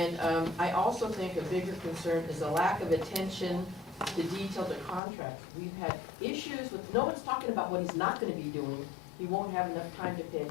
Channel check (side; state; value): right; drops out; at 5.0 s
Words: I also think a bigger concern is a lack of attention to detail to contracts. We've had issues with, no one's talking about what he's not going to be doing. He won't have enough time to pay